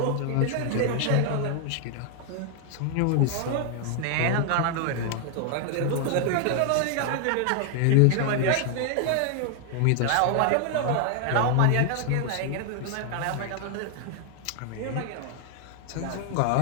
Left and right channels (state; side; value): different; both; correlation 0.00